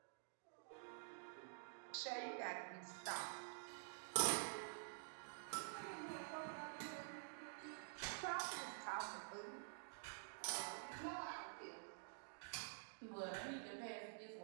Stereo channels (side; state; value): left; silent; digital silence